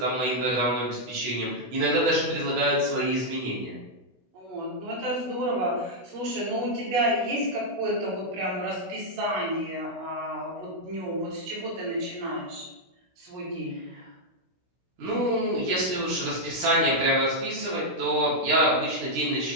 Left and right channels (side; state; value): left; late; 16 ms